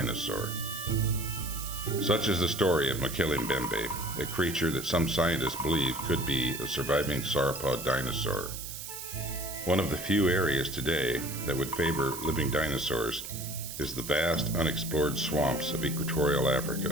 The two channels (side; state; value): right; noise; hiss, 9 dB below the sound